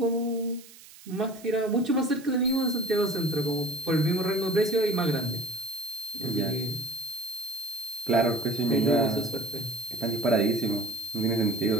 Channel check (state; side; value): noise; right; hiss, 20 dB below the sound